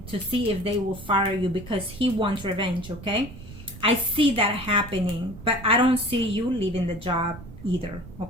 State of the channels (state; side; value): noise; right; rumble, 15 dB below the sound